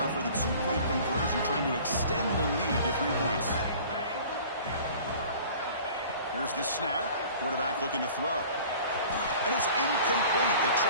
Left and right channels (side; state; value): both; inverted; correlation -0.46